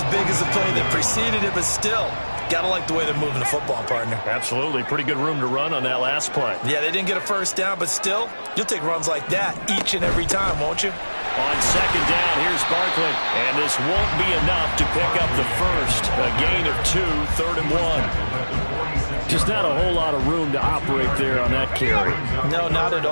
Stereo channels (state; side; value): inverted; both; correlation -1.00